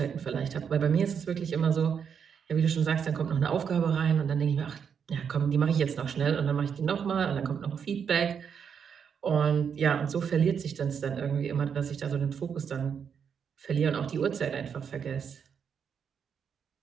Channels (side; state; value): left; quieter; 7.2 dB